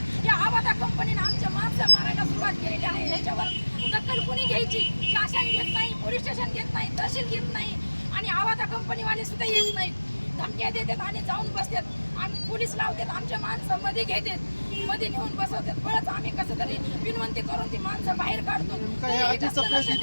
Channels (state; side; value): inverted; both; correlation -1.00